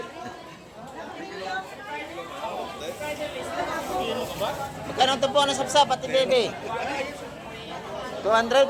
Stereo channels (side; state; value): both; identical; correlation 1.00